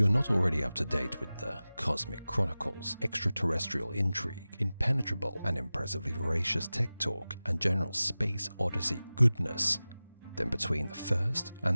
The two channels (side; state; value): both; inverted; correlation -0.97